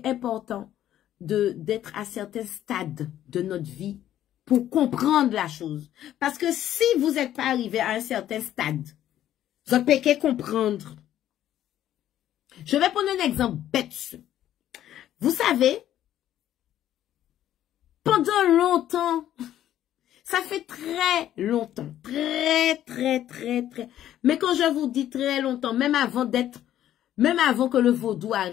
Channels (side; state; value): right; quieter; 11.9 dB